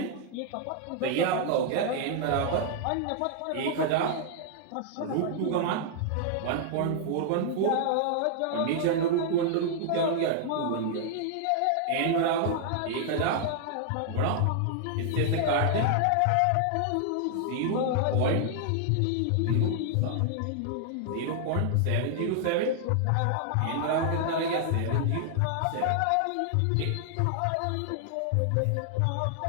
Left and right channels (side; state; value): both; different; correlation 0.00